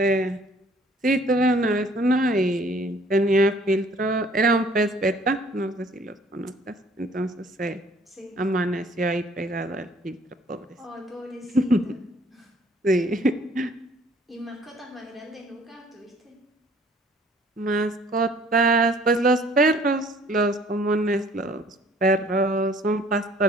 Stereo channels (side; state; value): both; normal; correlation 0.57